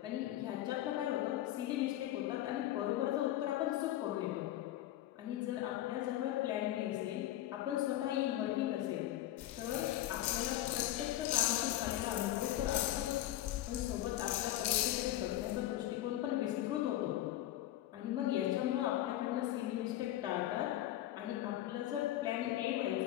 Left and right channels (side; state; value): right; quieter; 14.1 dB